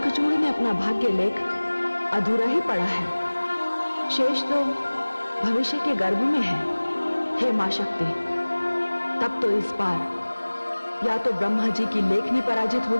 ने अपना भाग्य लेख अधूरा ही पड़ा है, शेष तो भविष्य के गर्भ में है। हे मां शक्ति, तब तो इस बार या तो ब्रह्मा जी की लेखनी पराजित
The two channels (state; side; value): inverted; both; correlation -1.00